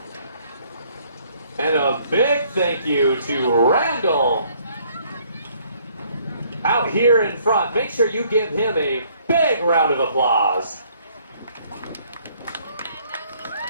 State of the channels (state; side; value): inverted; both; correlation -0.63